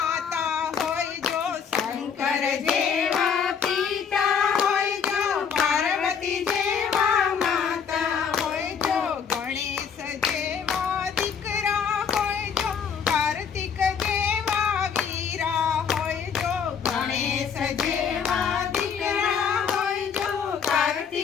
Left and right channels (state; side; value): quieter; right; 6.9 dB